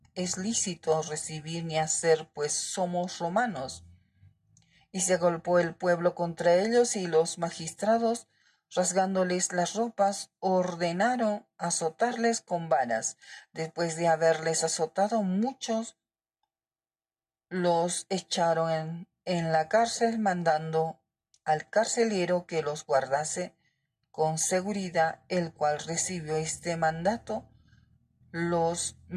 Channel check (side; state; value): both; identical; correlation 1.00